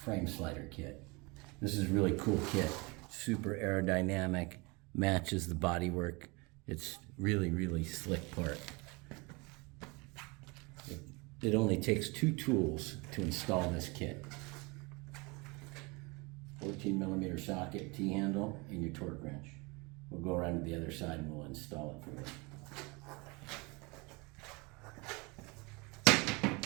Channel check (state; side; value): quieter; left; 27.2 dB